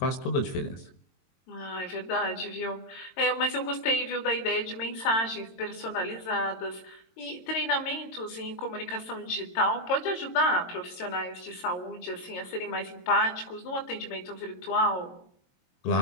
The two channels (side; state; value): right; late; 22 ms